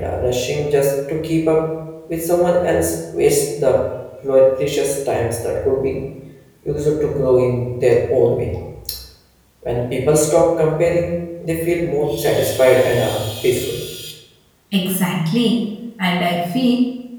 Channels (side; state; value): both; identical; correlation 1.00